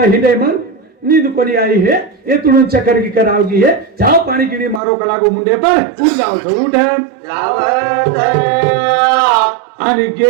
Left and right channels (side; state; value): left; drops out; at 4.8 s